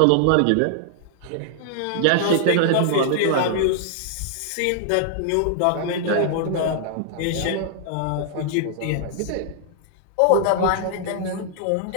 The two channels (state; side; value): different; both; correlation -0.01